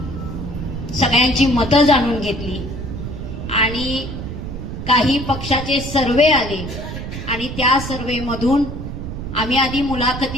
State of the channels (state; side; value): noise; right; rumble, 7 dB below the sound